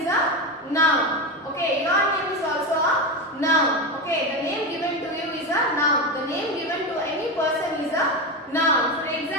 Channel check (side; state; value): both; normal; correlation 0.17